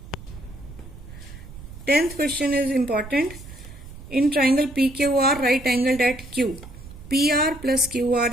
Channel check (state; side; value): noise; right; rumble, 15 dB below the sound